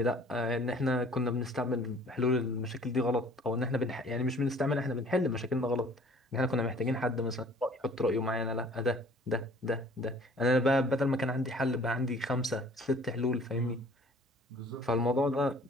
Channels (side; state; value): both; normal; correlation 0.53